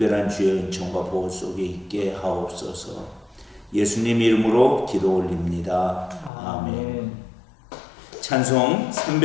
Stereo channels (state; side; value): drops out; right; at 6.3 s